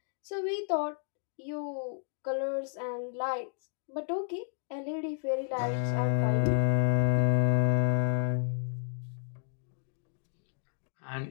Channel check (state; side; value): silent; right; digital silence